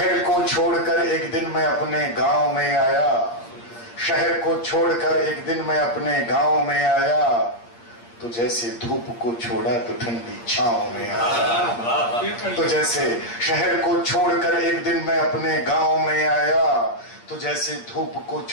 को छोड़कर एक दिन मैं अपने गांव में आया, शहर को छोड़कर एक दिन मैं अपने गांव में आया, तो जैसे धूप को छोड़ा तो ठंडी छांव में आया। तो जैसे शहर को छोड़कर एक दिन मैं अपने गांव में आया, तो जैसे धूप को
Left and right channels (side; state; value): right; late; 8.6 ms